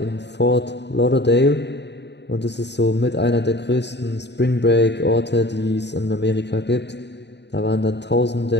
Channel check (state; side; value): late; right; 0.50 ms